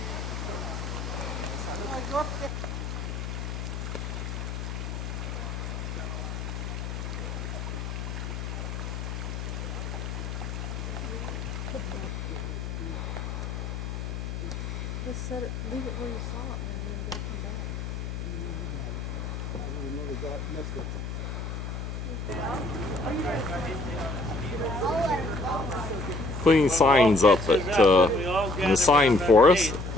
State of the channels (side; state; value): left; noise; hum, 5 dB below the sound